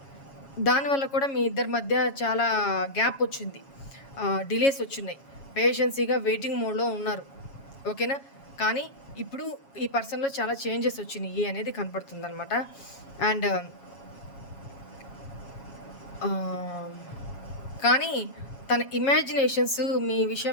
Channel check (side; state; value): right; late; 7.3 ms